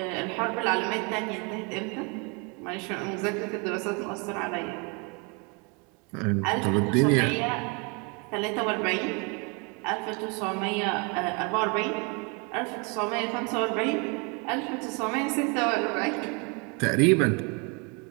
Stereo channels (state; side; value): quieter; left; 32.5 dB